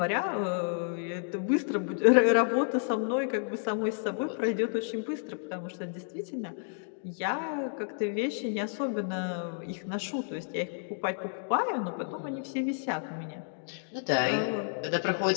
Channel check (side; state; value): right; silent; digital silence